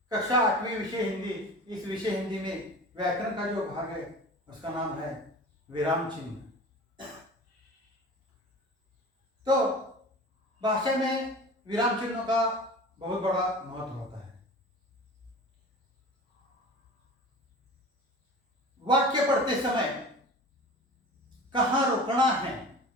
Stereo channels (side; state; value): both; normal; correlation 0.37